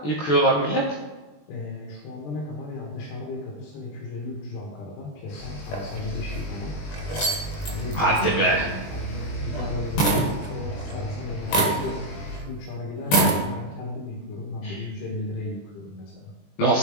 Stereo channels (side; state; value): right; late; 20 ms